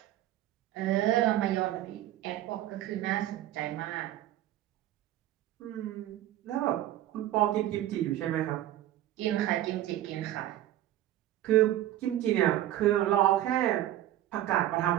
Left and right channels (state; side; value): quieter; left; 13.4 dB